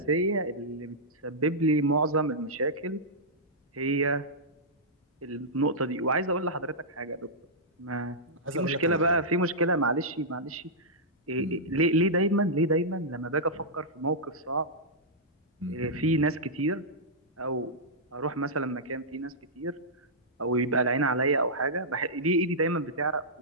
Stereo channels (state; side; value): normal; both; correlation -0.12